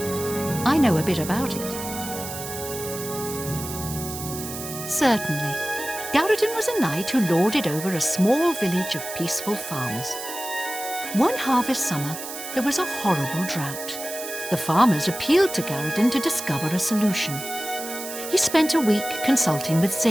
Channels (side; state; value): right; noise; hiss, 9 dB below the sound